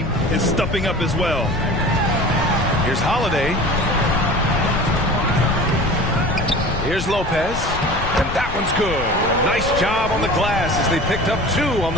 is stepping up as well. Here's Holiday. Here's Lopez. And that one's good. A nice job on the glass as they picked up 2 on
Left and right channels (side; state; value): left; noise; rumble, 8 dB below the sound